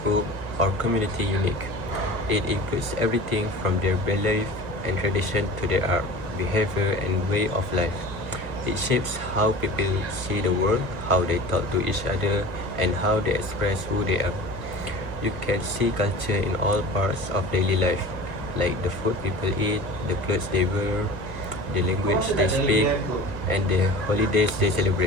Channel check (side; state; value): left; late; 1.3 ms